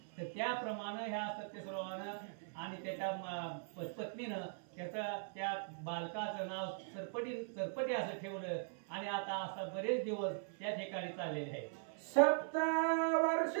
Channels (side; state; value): left; silent; 51 dB below the other